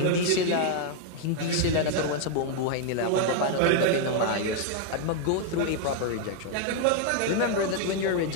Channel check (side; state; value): both; different; correlation 0.00